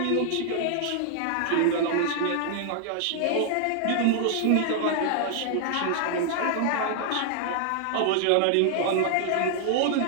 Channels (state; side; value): different; both; correlation -0.01